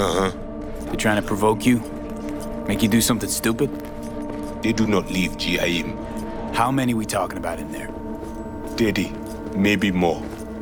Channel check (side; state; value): both; identical; correlation 1.00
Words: They're trying to provoke you? Make you do something stupid? They do not leave GIM. How many we talking about in there? 30, maybe more.